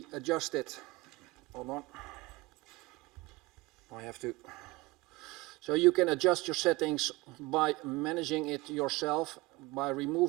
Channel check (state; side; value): quieter; left; 22.0 dB